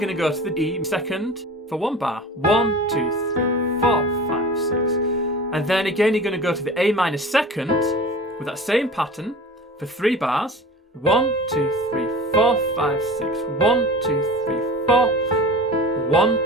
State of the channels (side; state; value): both; normal; correlation 0.37